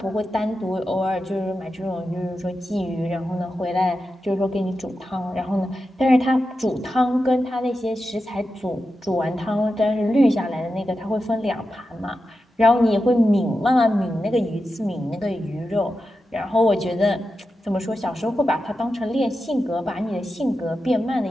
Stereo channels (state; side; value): normal; both; correlation 0.90